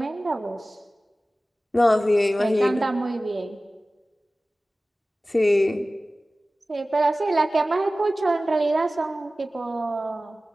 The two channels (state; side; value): normal; both; correlation 0.97